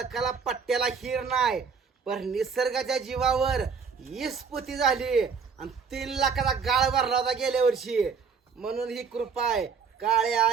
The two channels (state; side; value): quieter; left; 5.7 dB